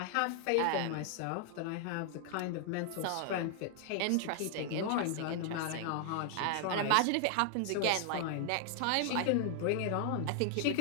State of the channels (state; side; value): different; both; correlation 0.00